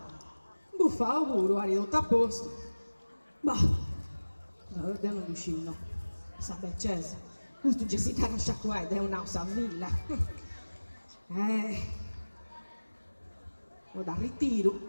buffa auguro, ha ridotto a posto. Ma, guarda un lucino, sa beccese, questo Jessica non sciacquetta è un'ausa villa. Lo da ritiro,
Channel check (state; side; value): inverted; both; correlation -1.00